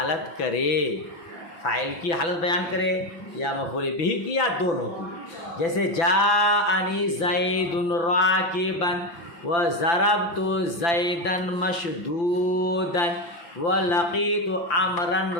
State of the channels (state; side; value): late; right; 6.0 ms